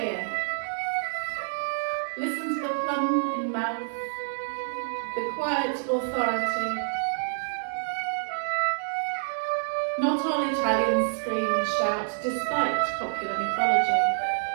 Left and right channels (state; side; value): silent; left; digital silence